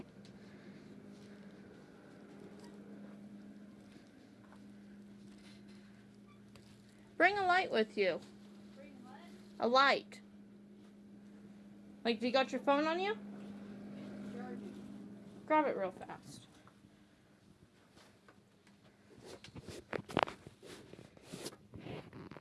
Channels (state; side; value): identical; both; correlation 1.00